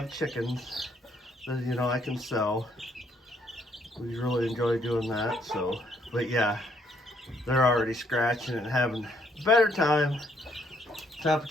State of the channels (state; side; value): normal; both; correlation 0.70